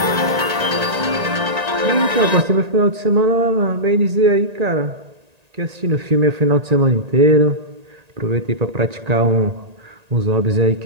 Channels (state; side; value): late; left; 1.8 ms